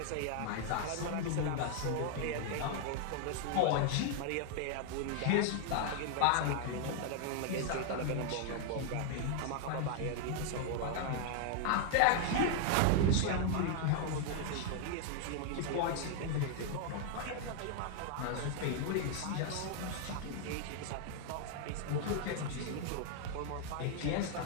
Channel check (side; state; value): both; different; correlation -0.01